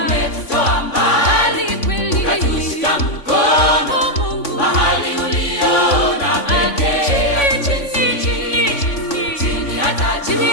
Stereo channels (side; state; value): right; late; 3.5 ms